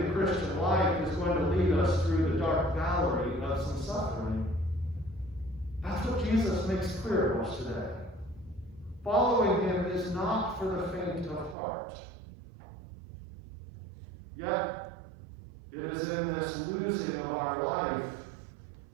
the Christian life is going to lead us through the dark valley of some suffering. That's what Jesus makes clear to us today. Following him is not for the faint of heart. Yet, it is in this losing of our life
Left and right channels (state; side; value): drops out; left; at 11.6 s